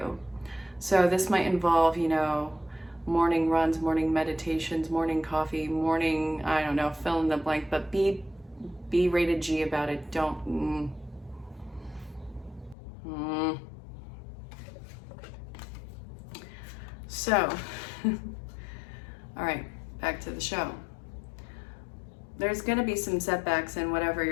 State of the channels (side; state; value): right; drops out; at 12.8 s